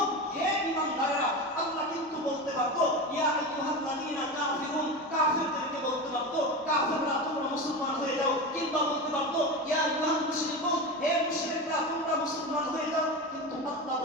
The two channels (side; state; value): both; normal; correlation 0.23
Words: হে ঈমানদাররা, আল্লাহ কিন্তু বলতে পারতো ইয়া আইয়ুহাল্লাযীনা কাফিরুন, কাফিরদেরকে বলতে পারতো কাফিররা তোমরা মুসলমান হয়ে যাও, কিংবা বলতে পারতো ইয়া আইয়ুহাল মুশরিকুন, হে মুশরিকরা তোমরা মুসলমান হয়ে যাও, কিন্তু আল্লাহ